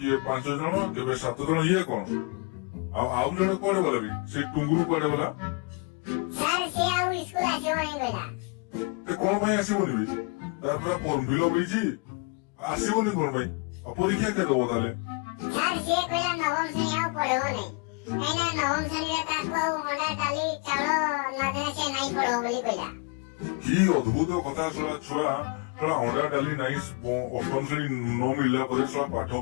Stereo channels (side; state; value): right; quieter; 30.4 dB